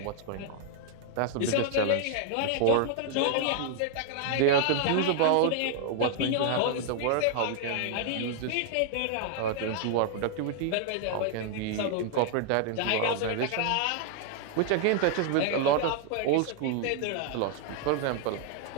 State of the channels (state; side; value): different; both; correlation 0.00